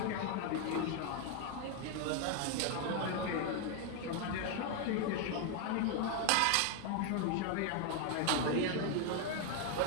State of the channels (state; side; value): different; both; correlation 0.01